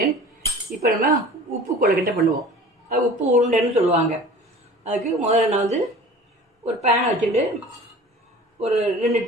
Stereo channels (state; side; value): normal; both; correlation 0.43